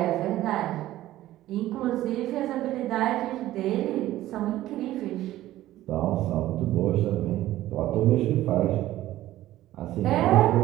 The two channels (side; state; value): left; quieter; 14.8 dB